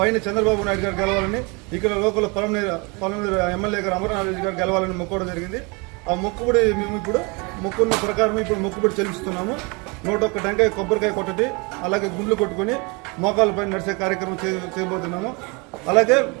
చంద్రబాబు నాయుడు గారు గెలవాలని, ఇక్కడ లోకల్ పొలంనేరు ఎమ్మెల్యే గారు అమర్నాథ్ రెడ్డి గారు గెలవాలని మొక్కోవడం జరిగింది. ఆ మొక్కుబడి మేము ఇప్పుడు మొక్కున్న ప్రకారం ఇప్పుడు మొక్కుబడి చెల్లిస్తున్నాము. 101 టెంకాయ కొబ్బరికాయ కొట్టటి, అలాగే గుండ్లు కొట్టుకొని మోకాళ్ళపై నడిచే కార్యక్రమం చేయబోతున్నాము. అలాగే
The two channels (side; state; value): left; quieter; 29.3 dB